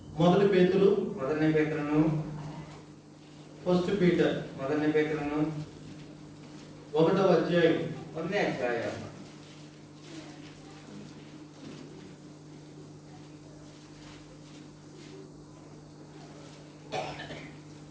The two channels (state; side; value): identical; both; correlation 1.00